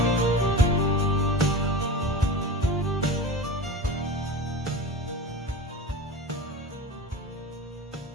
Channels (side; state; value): both; normal; correlation 0.31